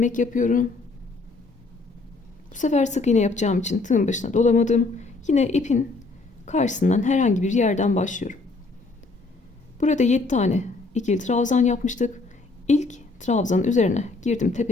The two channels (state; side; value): quieter; right; 3.6 dB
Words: yapıyorum. Bu sefer sık iğne yapacağım için tığın başına dolamadım. Yine ipin karşısından herhangi bir yerden başlıyorum. Burada 7 tane ikili trabzan yapmıştık. İlk trabzanın üzerine girdim,